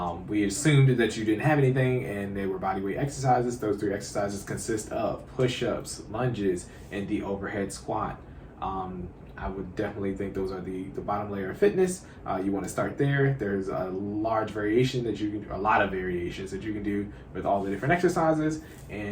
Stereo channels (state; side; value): identical; both; correlation 1.00